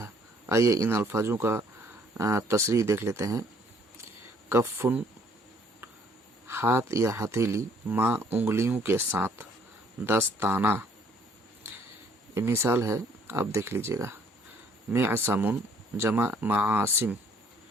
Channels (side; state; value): both; normal; correlation 0.62